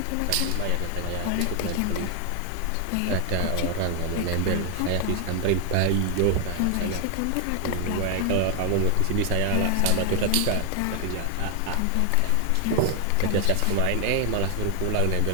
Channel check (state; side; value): different; both; correlation 0.00